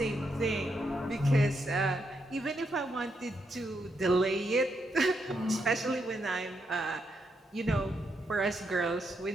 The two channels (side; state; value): both; normal; correlation 0.80